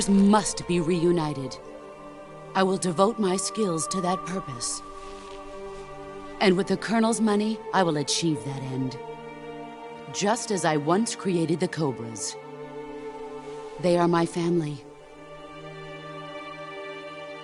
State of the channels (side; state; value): both; identical; correlation 1.00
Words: must be reunited. I will devote my skills to that purpose. And with the Colonel's money, I will achieve that end. Just as I once created the Cobras. They are my family.